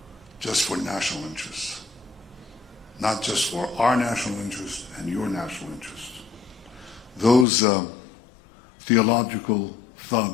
just for national interest, not just for our national interest and your national interest. Those theological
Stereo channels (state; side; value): drops out; right; at 7.5 s